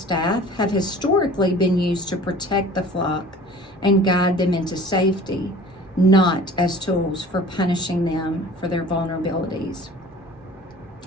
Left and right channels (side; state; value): both; normal; correlation 0.45